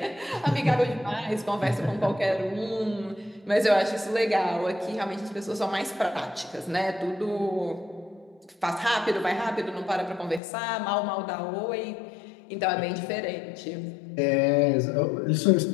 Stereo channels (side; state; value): right; drops out; at 10.4 s